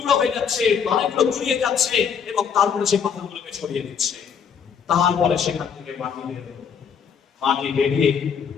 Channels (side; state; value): right; quieter; 7.0 dB